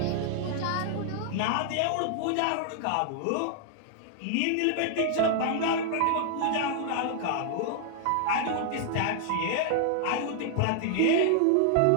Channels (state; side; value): different; both; correlation 0.00